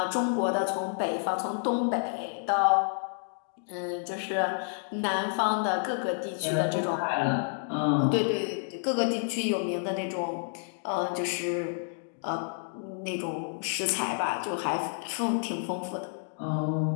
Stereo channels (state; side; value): silent; right; digital silence